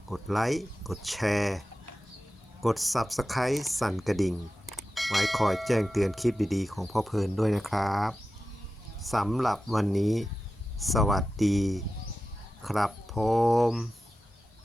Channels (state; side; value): normal; both; correlation 0.93